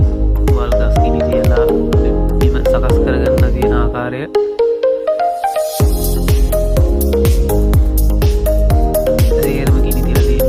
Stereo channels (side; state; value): both; identical; correlation 1.00